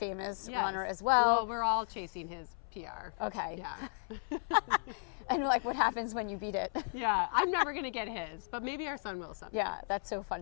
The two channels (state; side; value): silent; right; 54 dB below the other